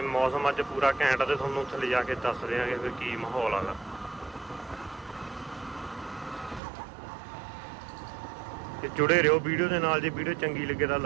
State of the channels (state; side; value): drops out; left; at 6.6 s